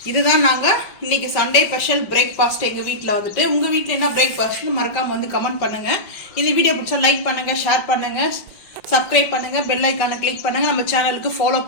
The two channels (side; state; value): right; late; 5.6 ms